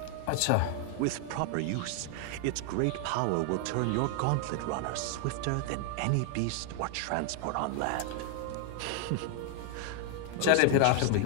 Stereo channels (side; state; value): both; different; correlation 0.00